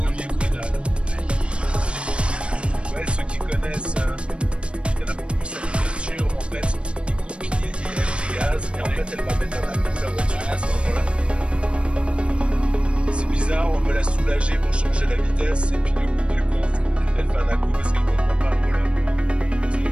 le pédale. Ouais, ceux qui connaissent, il y en a beaucoup, cette voiture, en fait, ils coupent, ils aiment les gaz, et en fait, elle va mettre un coup la voiture à ce moment-là. C'est bizarre, on veut la soulager pour changer la vitesse, et puis le coup du compte, elle fait un à-coup parce qu'elle comprend pas, voilà. Donc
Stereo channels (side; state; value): left; late; 0.058 ms